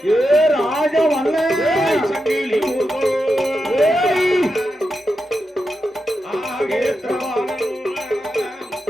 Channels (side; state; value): both; normal; correlation 0.88